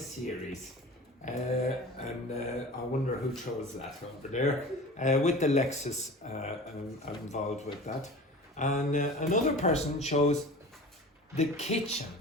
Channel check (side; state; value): both; normal; correlation 0.37